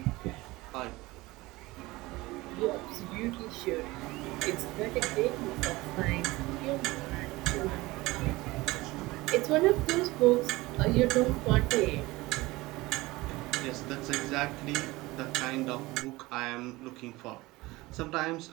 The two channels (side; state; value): left; quieter; 20.6 dB